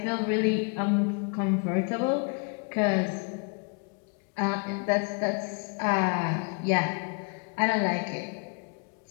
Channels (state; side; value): quieter; right; 36.1 dB